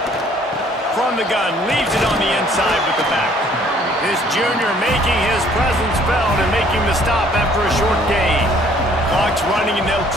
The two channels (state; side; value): normal; both; correlation 0.59